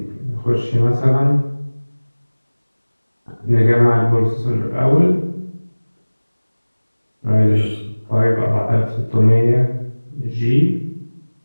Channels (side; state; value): both; inverted; correlation -1.00